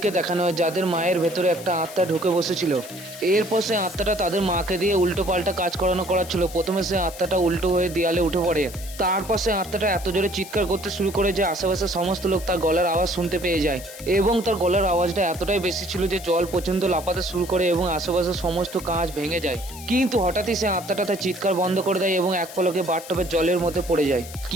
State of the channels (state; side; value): noise; left; hiss, 15 dB below the sound